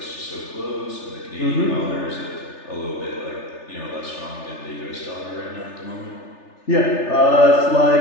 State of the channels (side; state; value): right; late; 3.4 ms